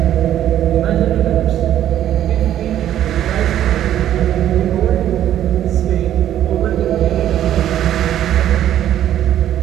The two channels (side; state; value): left; quieter; 11.5 dB